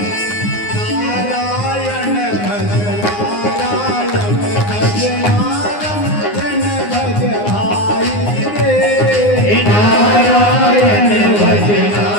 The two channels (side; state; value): right; late; 9.7 ms